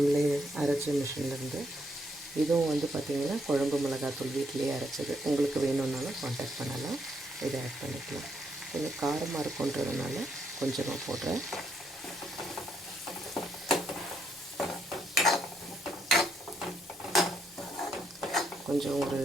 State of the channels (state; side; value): normal; both; correlation 0.75